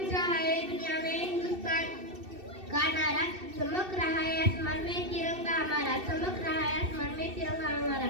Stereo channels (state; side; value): late; left; 2.6 ms